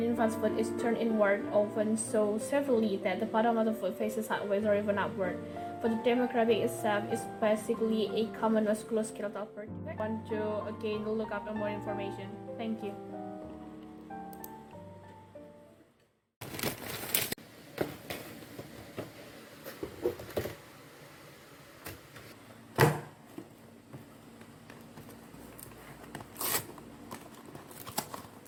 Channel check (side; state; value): both; identical; correlation 1.00